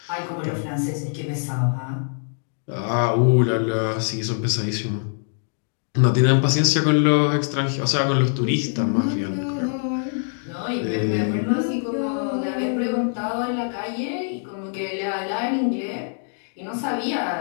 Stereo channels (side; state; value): right; silent; digital silence